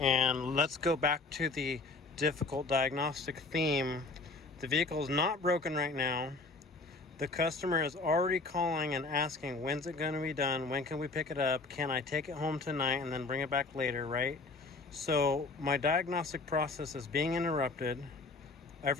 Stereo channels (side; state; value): right; quieter; 3.7 dB